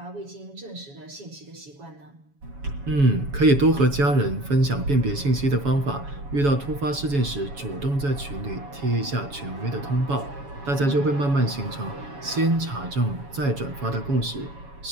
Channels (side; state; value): left; late; 7.1 ms